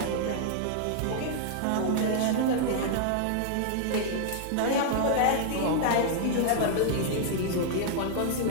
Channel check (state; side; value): different; both; correlation -0.01